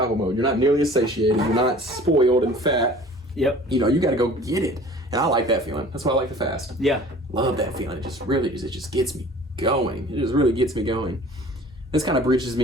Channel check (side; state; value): both; normal; correlation 0.47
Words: mode. You're not nearly as satiated. You're not spoiled and fat. Yep. You got to go get it. And I like that feeling. That's why I like the fast. Yeah. Love that feeling. It just gets me going. It just really gets me going. This kind of bridges